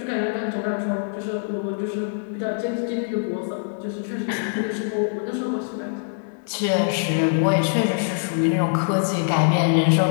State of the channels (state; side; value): silent; right; digital silence